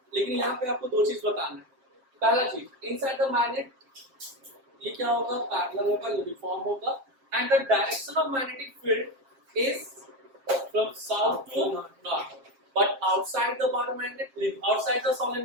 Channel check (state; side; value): late; left; 7.5 ms